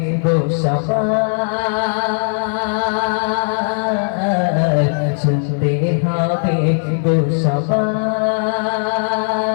গো সবার, শুনতে হবে গো সবার,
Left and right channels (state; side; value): silent; right; digital silence